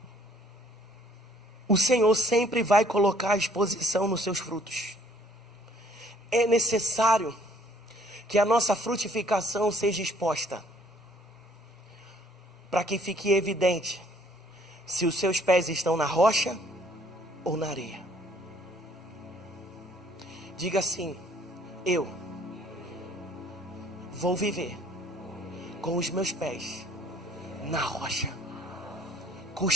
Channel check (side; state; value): both; normal; correlation 0.61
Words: O Senhor sempre vai colocar a exposição nos seus frutos. É necessário que a nossa frutificação seja exposta, para que fique evidente se os seus pés estão na rocha ou na areia. Diga assim: eu vou viver com os meus pés na rocha,